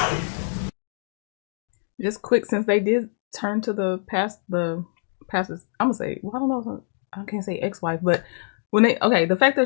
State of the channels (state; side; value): silent; right; digital silence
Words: Just quick, since they did turn to the pastor's, I'm gonna say, well, I don't know, I can't say ex-wife, but when the fact